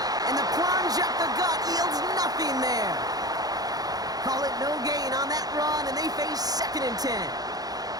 And the plunge up the gut yields nothing there. Call it no gain on that run, and they face 2nd and 10.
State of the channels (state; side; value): late; left; 0.18 ms